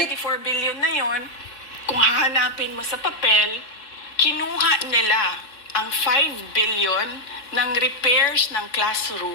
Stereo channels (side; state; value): right; late; 4.1 ms